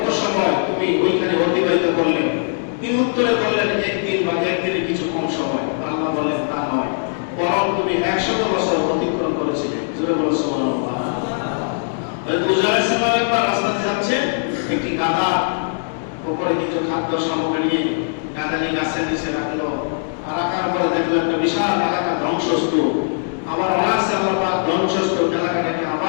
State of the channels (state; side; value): silent; right; digital silence